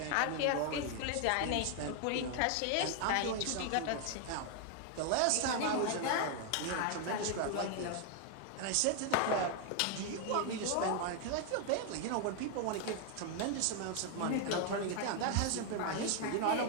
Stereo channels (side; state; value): both; different; correlation 0.00